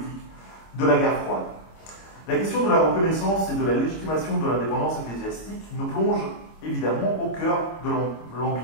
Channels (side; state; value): right; late; 26 ms